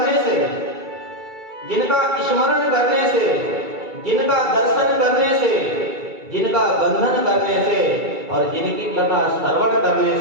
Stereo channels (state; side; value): late; left; 2.3 ms